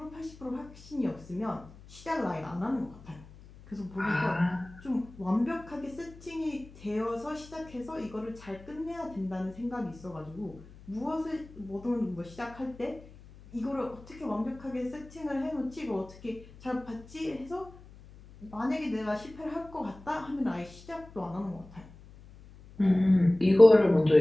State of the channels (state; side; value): noise; left; hum, 20 dB below the sound